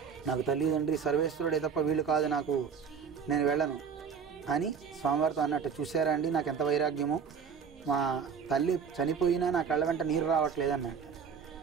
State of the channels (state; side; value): quieter; left; 6.7 dB